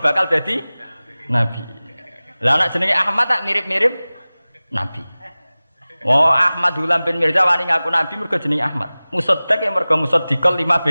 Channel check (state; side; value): inverted; both; correlation -0.98